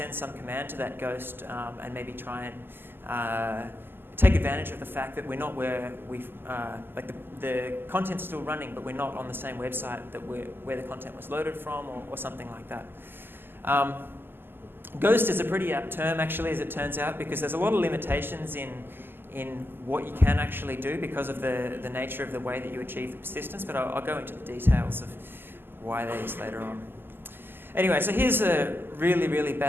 some command to that ghost and maybe try and take advantage of the fact that we're not where like the content's still running, but we're not on the same website that where the content was loaded from, or something like that. Ghost is a pretty apt term, actually, as it turns out, because there's a lot of limitations in what you can actually do because of the nature of the way that you achieve the persistence, but I'll go into the details of why that is later on. Anyway, so here's a really, really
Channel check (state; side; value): late; left; 0.10 ms